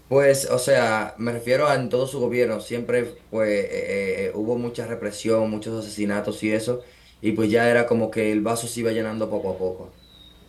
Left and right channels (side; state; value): both; identical; correlation 1.00